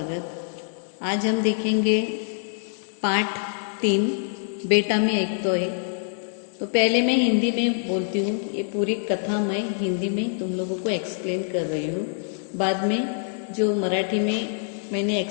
आज हम देखेंगे पार्ट 3 बेटा में एक तो एक। तो पहले मैं हिंदी में बोलती हूँ, ये पूरी कथा मैं हिंदी में तुम लोगों को एक्सप्लेन कर रही हूँ। बाद में जो मराठी में मैंने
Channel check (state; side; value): silent; right; digital silence